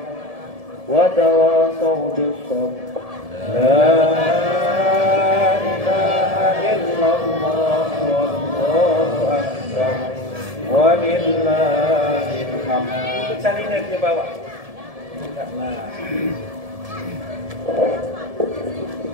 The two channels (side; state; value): left; late; 1.7 ms